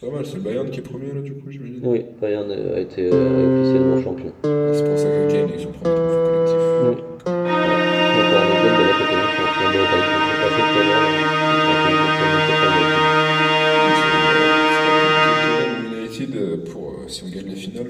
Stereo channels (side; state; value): both; identical; correlation 1.00